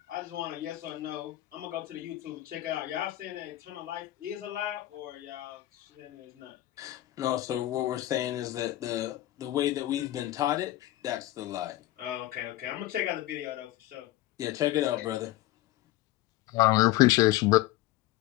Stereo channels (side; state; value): right; quieter; 16.0 dB